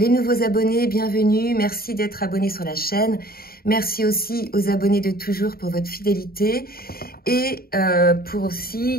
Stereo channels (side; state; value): right; late; 0.44 ms